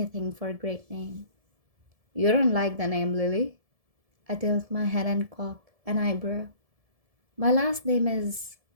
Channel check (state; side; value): late; left; 1.7 ms